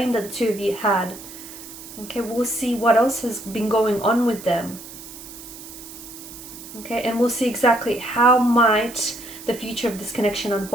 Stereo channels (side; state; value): right; noise; hiss, 15 dB below the sound